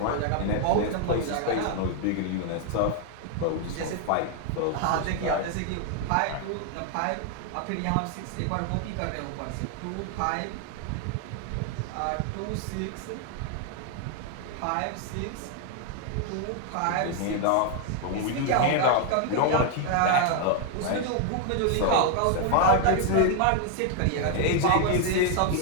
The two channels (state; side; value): different; both; correlation 0.00